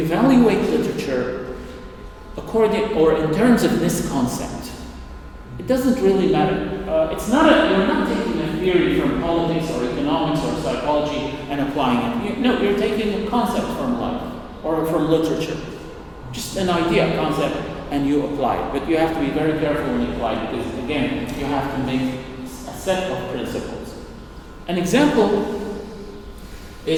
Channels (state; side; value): identical; both; correlation 1.00